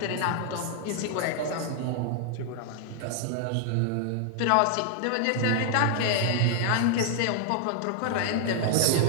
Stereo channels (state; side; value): different; both; correlation 0.00